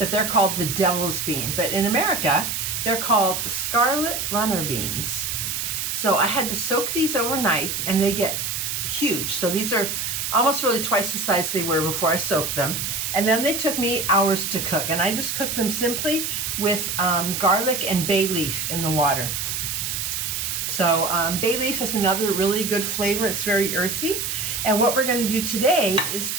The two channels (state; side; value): noise; right; hiss, 2 dB below the sound